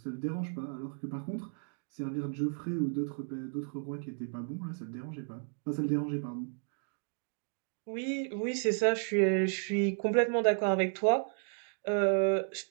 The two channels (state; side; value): silent; left; 56 dB below the other